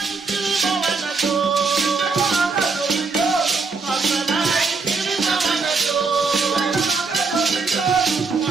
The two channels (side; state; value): left; quieter; 4.5 dB